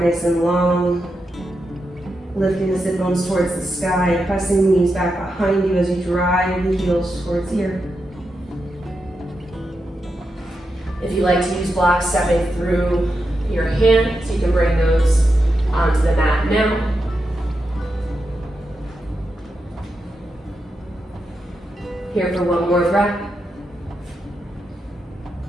and long. Lifting the sit bones towards the sky. Pressing the knees back behind you as you drive the heels towards the earth. If you like to use blocks stepping through your hands, you can bring those onto the mat now. Here for one more breath.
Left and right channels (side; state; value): both; normal; correlation 0.86